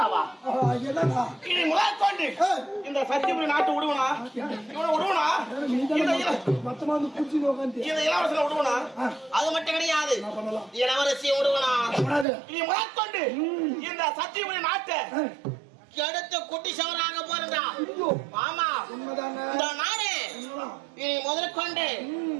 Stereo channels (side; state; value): left; drops out; at 12.2 s